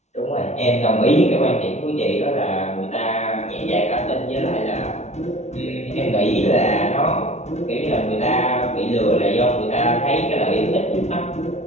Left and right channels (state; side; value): late; right; 0.32 ms